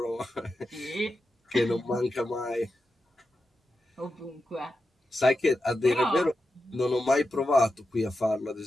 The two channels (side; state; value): both; normal; correlation 0.90